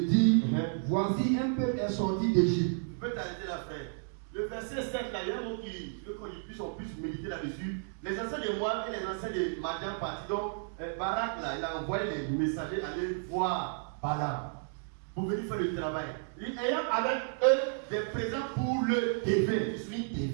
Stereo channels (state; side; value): silent; left; digital silence